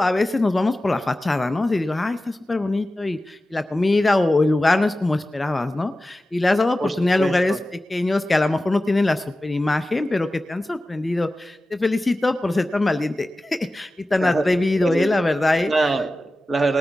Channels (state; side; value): normal; both; correlation 0.95